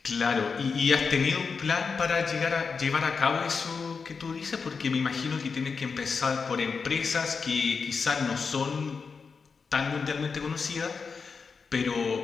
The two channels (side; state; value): right; quieter; 5.2 dB